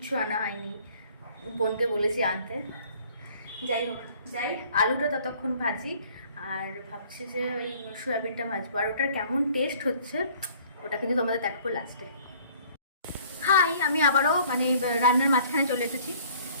আনা হয়নি। বোনকে বলেছি আনতে। যাই হোক, আলুটা ততক্ষণ ভাজি, আর ভাবছি যে ওই সয়াবিনটা ভাজবো। আর ওটার কেমন টেস্ট হচ্ছে ওটা কিন্তু তোমাদের দেখাবো লাস্টে। হাই, আমি আবারও মানে রান্নার মাঝখানে চলে এসেছি।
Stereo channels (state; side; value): inverted; both; correlation -0.55